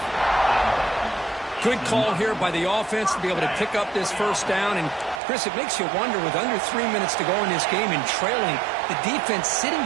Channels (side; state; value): left; drops out; at 5.2 s